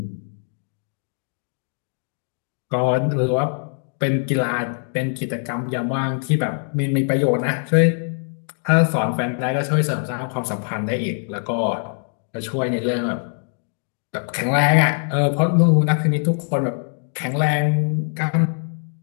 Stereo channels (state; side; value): silent; right; 62 dB below the other